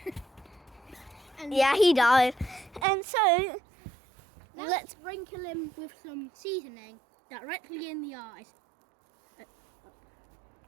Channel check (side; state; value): left; drops out; at 2.9 s